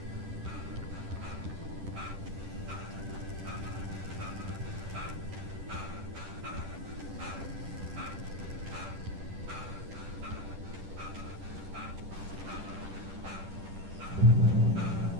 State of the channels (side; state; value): left; late; 10 ms